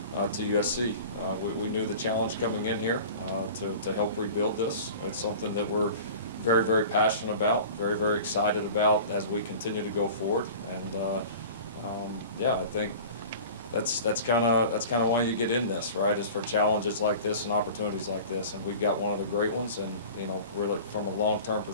to USC. We knew the challenge coming in here to help rebuild this. It's something that we're very, very passionate about, very, very excited about as we continue to go forward. And I think that's kind of why you get in this, right? Is for challenges like this and opportunities like this, and we've got one of the great ones. And really from a long-term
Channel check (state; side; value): inverted; both; correlation -0.40